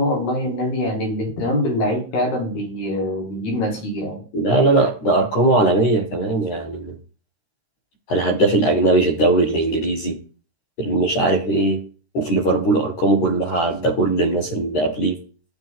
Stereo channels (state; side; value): late; right; 13 ms